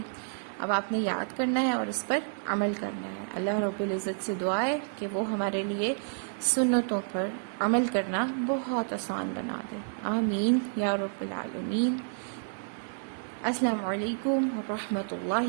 اب آپ نے یاد کرنا ہے اور اس پر عمل کرنا ہے۔ اللہ رب العزت سے دعا ہے کہ وہ ہمارے لیے سنتوں پر عمل کرنا بہت آسان بنا دے۔ آمین یا رب العالمین۔ السلام علیکم ورحمۃ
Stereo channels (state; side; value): silent; left; digital silence